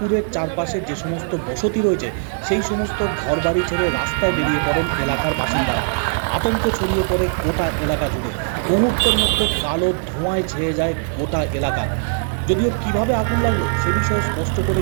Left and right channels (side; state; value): left; silent; 66 dB below the other